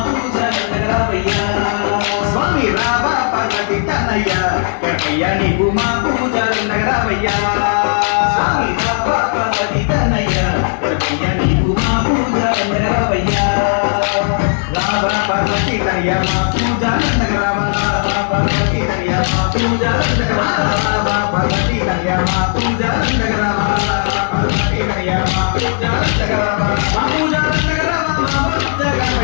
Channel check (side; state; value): right; silent; digital silence